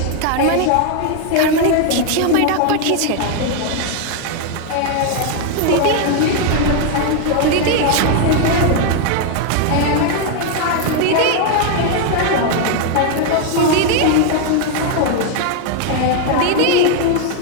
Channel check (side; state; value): both; different; correlation 0.00